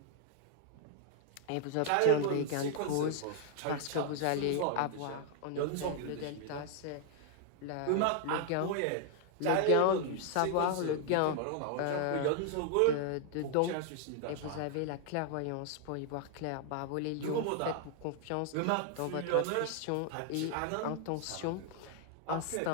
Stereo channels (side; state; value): both; different; correlation 0.00